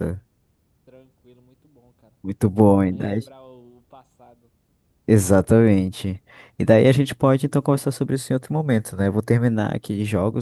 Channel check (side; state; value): both; identical; correlation 1.00